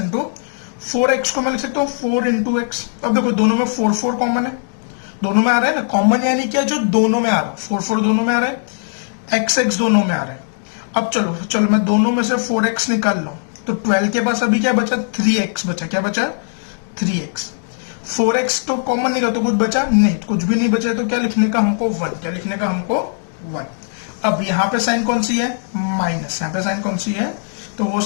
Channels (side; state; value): right; silent; digital silence